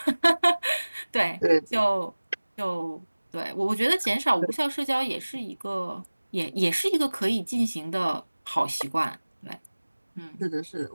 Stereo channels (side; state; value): both; inverted; correlation -1.00